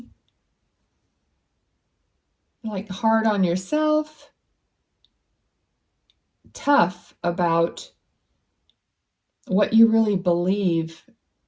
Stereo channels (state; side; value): identical; both; correlation 1.00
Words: hard on yourself, tough about what you really believe